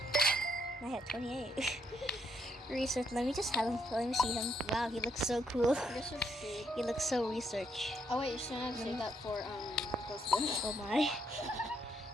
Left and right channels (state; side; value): normal; both; correlation 0.74